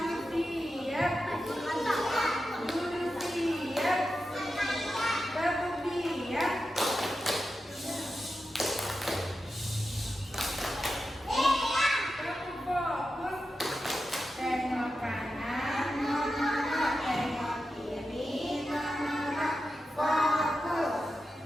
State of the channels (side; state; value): both; normal; correlation 0.90